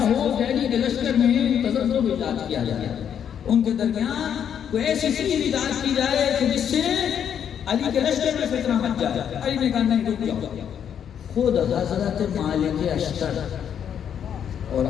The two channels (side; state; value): right; quieter; 8.7 dB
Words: ہو کہ علی کے لشکر میں تزلزل ایجاد کیا جائے, ان کے درمیان کوئی ایسی چیز ایجاد کی جائے کہ جس سے علی کے لشکر میں فتنہ مچ جائے. علی نے کہا نہیں, رک جاؤ. خود حضرت مالک اشتر اور